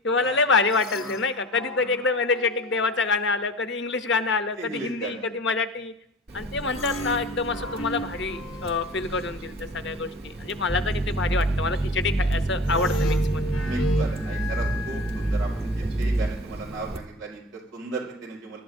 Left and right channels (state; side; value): normal; both; correlation 0.37